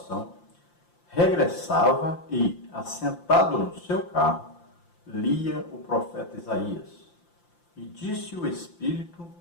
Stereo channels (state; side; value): late; right; 5.8 ms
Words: regressava e, assentado no seu carro, lia o profeta Isaías. E disse o Espírito